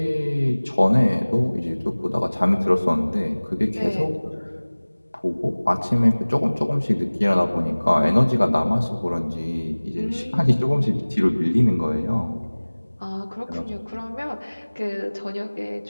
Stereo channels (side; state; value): both; inverted; correlation -1.00